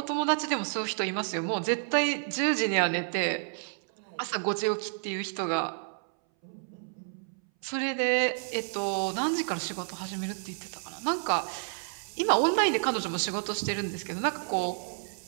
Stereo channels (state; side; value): silent; left; 58 dB below the other